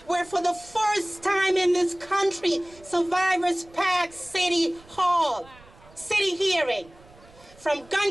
where for the first time in this country, survivors packed City Hall, city hearing, from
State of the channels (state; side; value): noise; right; rumble, 25 dB below the sound